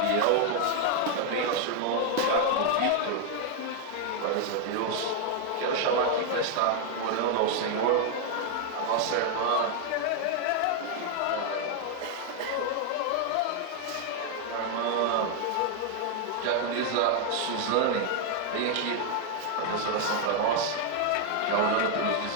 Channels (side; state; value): both; different; correlation 0.01